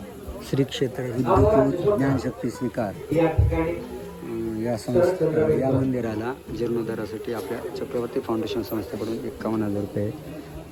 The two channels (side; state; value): both; identical; correlation 1.00